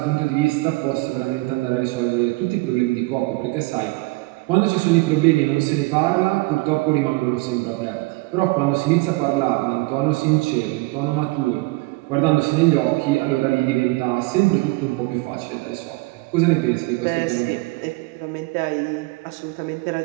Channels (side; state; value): left; quieter; 23.6 dB